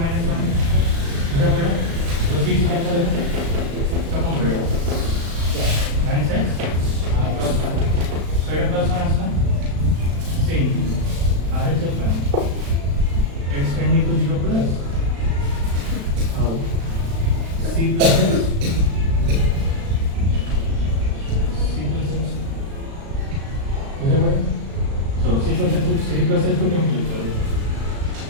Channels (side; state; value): left; late; 36 ms